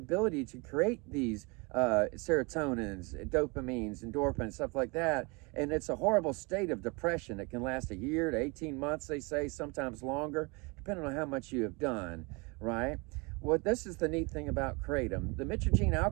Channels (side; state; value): left; quieter; 28.6 dB